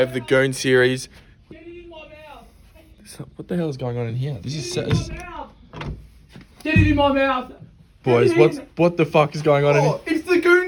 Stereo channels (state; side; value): identical; both; correlation 1.00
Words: the Goon series. What the hell is going on in here? This is set. Get it in my mouth! Boys, what the fuck is going on in here? It's the